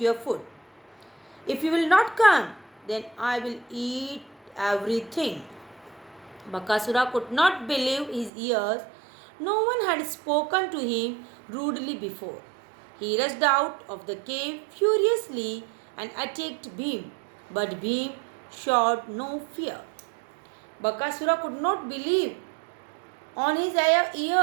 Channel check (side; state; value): left; drops out; at 8.3 s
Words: food. If you will not come, then I will eat everything. Bakasura could not believe his ears. No one had spoken to him rudely before. He rushed out of the cave furiously and attacked Bhim, but Bhim showed no fear. Bakasura could not believe on his